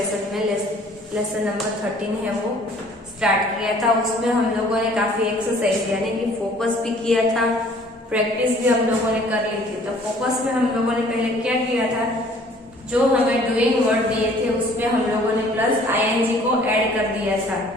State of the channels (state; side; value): normal; both; correlation 0.55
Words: में लेसन नंबर 13 है वो स्टार्ट किया था। उसमें हम लोगों ने काफी एक्सरसाइज यानी कि फोकस भी किया था, प्रैक्टिस भी हम लोगों ने कर ली थी। तो फोकस में हम लोगों ने पहले क्या किया था, जो हमें डूइंग वर्ड दिए थे उसमें हम लोगों ने प्लस आईएनजी को ऐड कर दिया था।